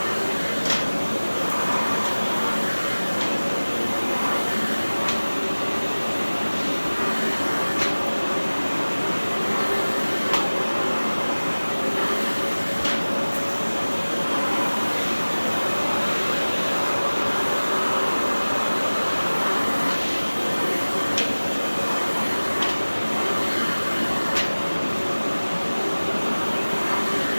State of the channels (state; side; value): inverted; both; correlation -1.00